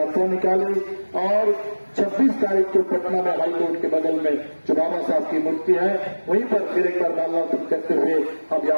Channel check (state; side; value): inverted; both; correlation -1.00